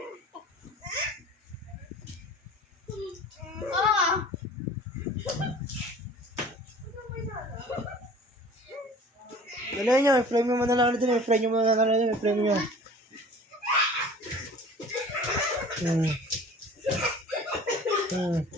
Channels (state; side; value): normal; both; correlation 0.45